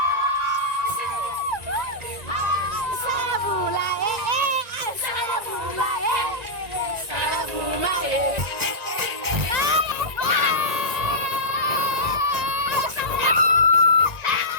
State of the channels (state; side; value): late; left; 1.9 ms